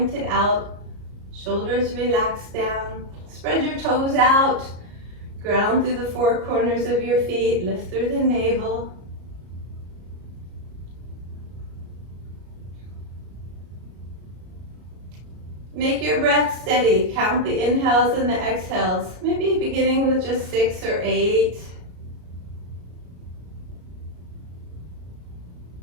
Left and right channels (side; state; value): left; late; 33 ms